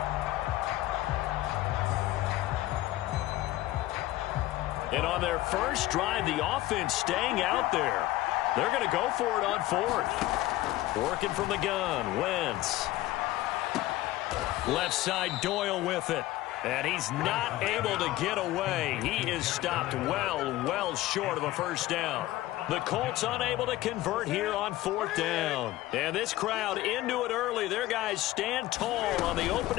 And on their first drive, the offense staying out there. They're going to go for it on 4th. Working from the gun, Wentz. Left side, Doyle with it. And he's not able to get away. He is stopped well short of a first down. The Colts unable to convert here on 4th down. And this crowd into it early. Their guys stand tall on the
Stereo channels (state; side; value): quieter; right; 16.5 dB